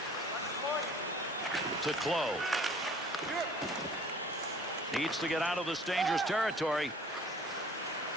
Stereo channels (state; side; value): normal; both; correlation 0.50